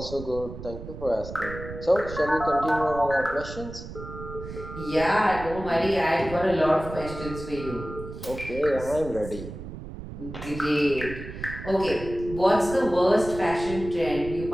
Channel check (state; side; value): noise; right; rumble, 11 dB below the sound